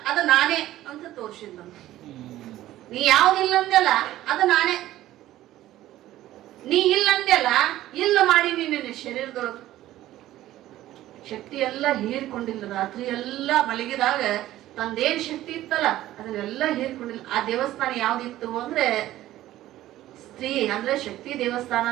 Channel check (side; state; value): left; quieter; 14.5 dB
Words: ಅದು ನಾನೇ ಅಂತ ತೋರ್ಸಿದ್ಲಂತ. ನೀ ಯಾವ್ದು ಇಲ್ಲ ಅಂದೆಲ್ಲ ಅದು ನಾನೇ, ನೀ ಇಲ್ಲ ಅಂದೆಲ್ಲ ಇಲ್ಲ ಮಾಡಿ ನಿನ್ನ ಶರೀರದೊಳಗ ಶಕ್ತಿ ಎಲ್ಲ ಹೀರ್ಕೊಂಡಿಲ್ಲ. ರಾತ್ರಿ ಎಲ್ಲ ಮಲಗಿದಾಗ ತಂದೇನ್ ಶಕ್ತಿ ಇತ್ತಲ್ಲ ಅದನ್ನೆಲ್ಲ ಹೀರ್ಕೊಂಡಿಲ್ಲ. ಆ ದೇವಸ್ಥಾನ ಯಾವ್ದಿತ್ತು ಅಂದ್ರೆ ಸ್ತ್ರೀ ಅಂದ್ರೆ ಶಕ್ತಿ